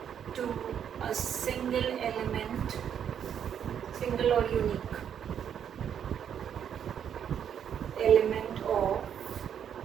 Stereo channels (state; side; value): quieter; left; 8.7 dB